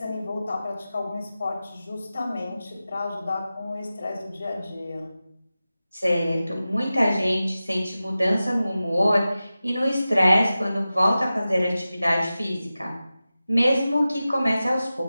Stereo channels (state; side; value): inverted; both; correlation -0.95